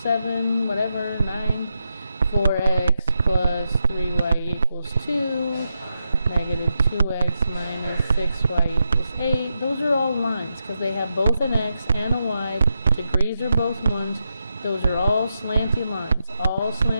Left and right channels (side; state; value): both; inverted; correlation -0.86